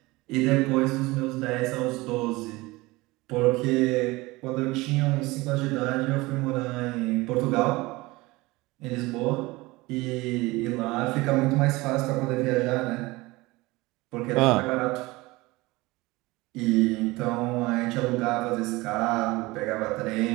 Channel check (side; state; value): left; quieter; 21.5 dB